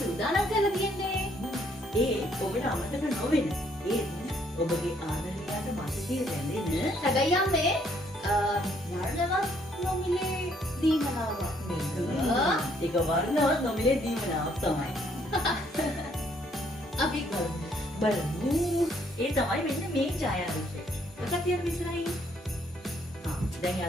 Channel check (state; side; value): normal; both; correlation 0.67